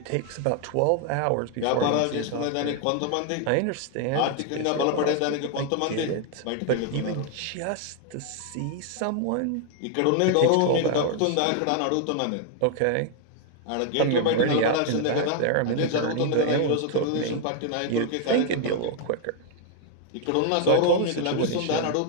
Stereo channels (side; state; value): both; different; correlation 0.00